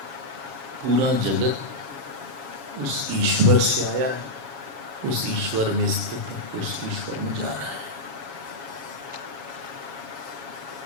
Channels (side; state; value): left; late; 7.3 ms